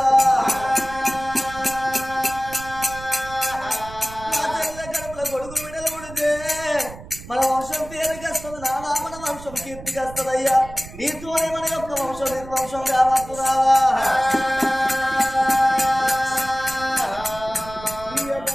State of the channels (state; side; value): noise; right; rumble, 15 dB below the sound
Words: నా చెల్ల కడుపుల కొడుకు విడలు ఉడితే మన వంశం పేరుకి వస్తుంది నానా మన వంశం కీర్తికి వస్తుందయ్యా నీతోనే మన యొక్క వంశం నిర్వంశం కావద్దు రావా